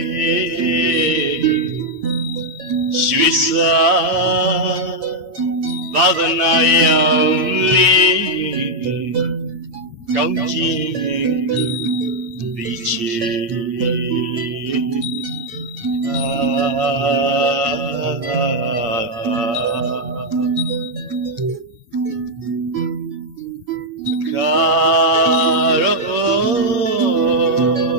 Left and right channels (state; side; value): late; left; 8.6 ms